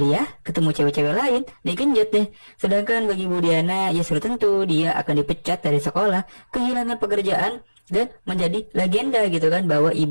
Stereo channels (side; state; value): both; inverted; correlation -1.00